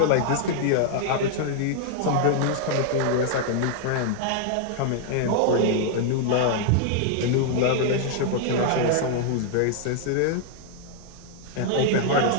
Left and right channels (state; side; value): different; both; correlation 0.00